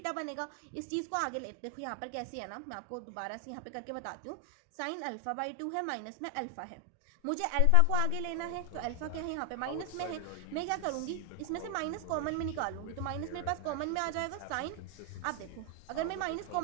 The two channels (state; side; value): different; both; correlation 0.00